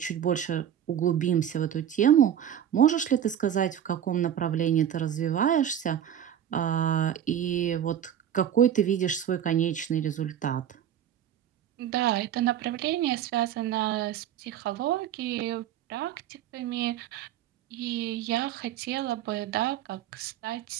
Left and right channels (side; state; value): left; quieter; 10.0 dB